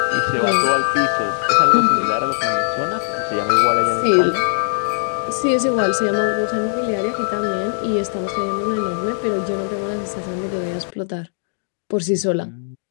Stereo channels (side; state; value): right; silent; digital silence